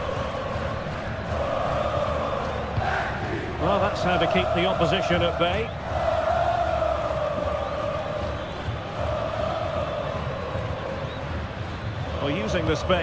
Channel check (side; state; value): both; identical; correlation 1.00